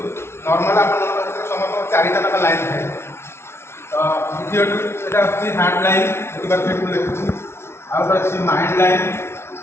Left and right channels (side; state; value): right; late; 0.12 ms